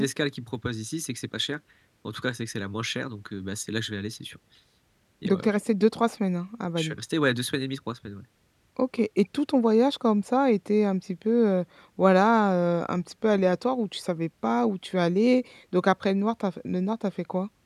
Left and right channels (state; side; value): identical; both; correlation 1.00